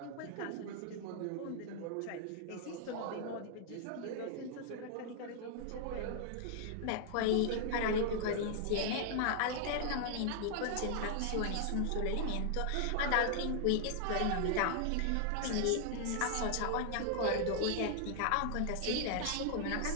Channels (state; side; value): different; both; correlation -0.01